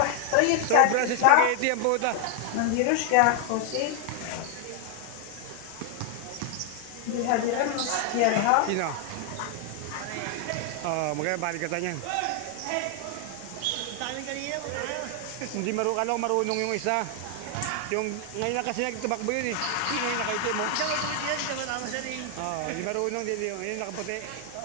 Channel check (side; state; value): both; different; correlation 0.00